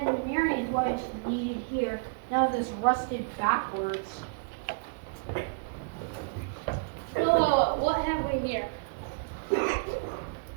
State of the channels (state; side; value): quieter; left; 36.0 dB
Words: and Marion's what is needed here. Now this rusted backwards. Whoa, what have we here?